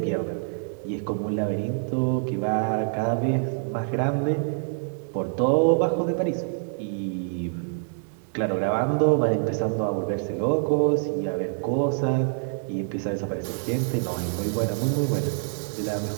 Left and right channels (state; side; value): silent; left; digital silence